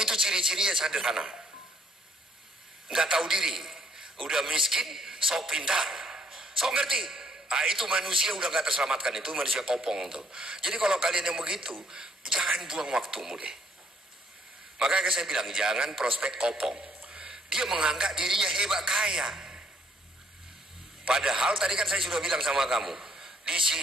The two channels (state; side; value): normal; both; correlation 0.68